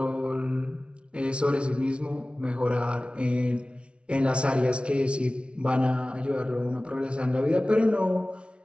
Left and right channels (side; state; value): left; late; 0.059 ms